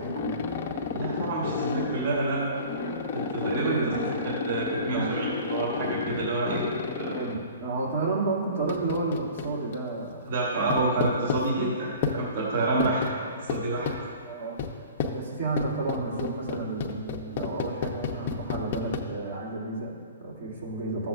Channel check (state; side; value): inverted; both; correlation -0.42